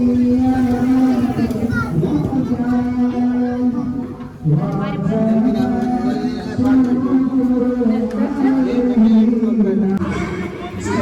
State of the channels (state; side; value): identical; both; correlation 1.00